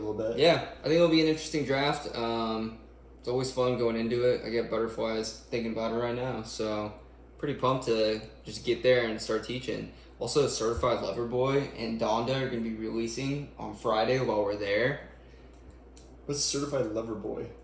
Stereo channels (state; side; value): identical; both; correlation 1.00